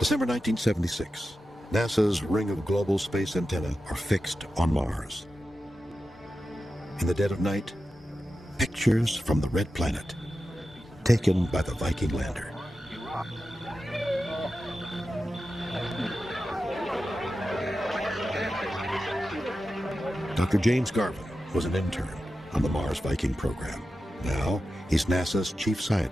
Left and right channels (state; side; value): normal; both; correlation 0.92